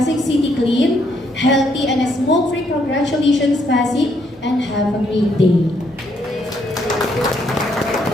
City clean, healthy, and smoke-free. Congratulations, Pasig, and have a great day.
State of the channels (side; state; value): both; normal; correlation 0.72